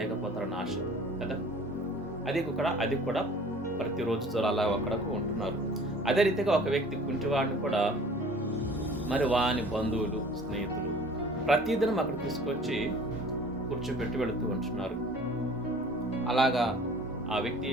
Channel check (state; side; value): normal; both; correlation 0.48